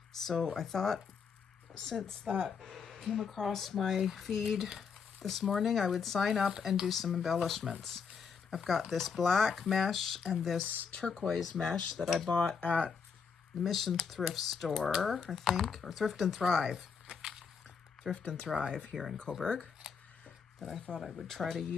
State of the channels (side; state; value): right; quieter; 6.0 dB